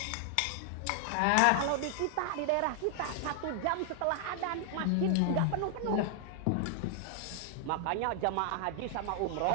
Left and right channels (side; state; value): both; different; correlation 0.00